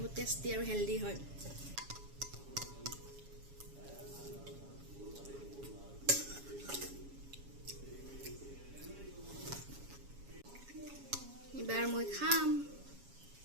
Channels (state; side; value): late; left; 7.2 ms